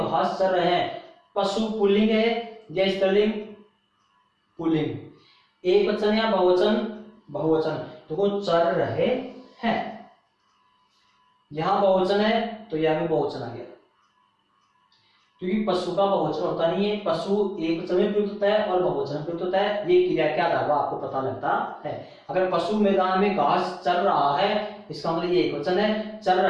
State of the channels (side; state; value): both; identical; correlation 1.00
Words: चर रहे हैं, पशु पुल्लिंग है या स्त्रीलिंग, पुल्लिंग, एक वचन या बहुवचन, बहुवचन। तो वो चर रहे हैं, यहां बहुवचन है तो यह भी बहुवचन आ गया, क्योंकि पशु का बहुवचन होता नहीं है, पशु एक वचन में प्रयुक्त होता है और बहुवचन में प्रयुक्त होता है। ये क्रिया के आधार पर आपको पता लगता है। अगर पशु मैदान में घास चर रहा है इसका मतलब ये एक वचन है, चल